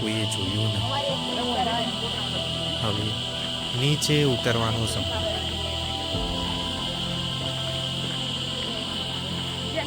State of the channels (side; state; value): both; identical; correlation 1.00